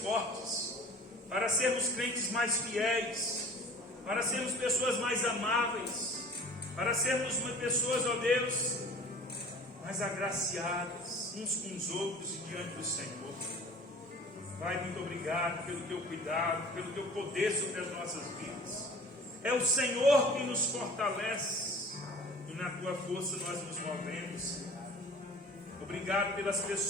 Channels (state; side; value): normal; both; correlation 0.45